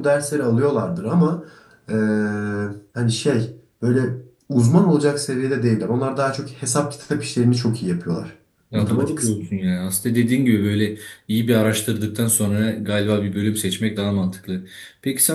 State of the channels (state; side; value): identical; both; correlation 1.00